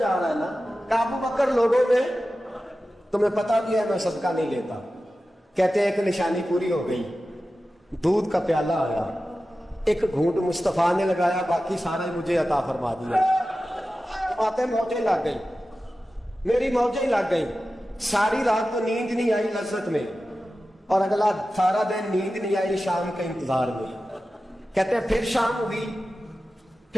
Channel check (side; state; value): both; normal; correlation 0.94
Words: رہا ہے نا کہ ابو بکر لوگوں میں تمہیں پتا بھی ہے میں صدقہ نہیں لیتا۔ کہتے ہیں ایک نشانی پوری ہو گئی، دودھ کا پیالہ آیا، ایک گھونٹ مصطفیٰ نے لگایا، باقی سارا مجھے عطا فرما دیا۔ باتیں موجیں لگ گئی، میری موجیں لگ گئی، ساری رات تو نیند نہیں آئی لذت میں، اور اگلا سارا دن نیند نہیں آئی شام کے انتظار میں۔ کہتے ہیں پھر شام ہوئی،